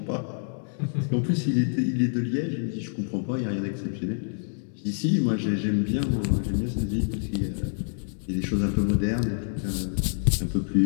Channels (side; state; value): right; silent; digital silence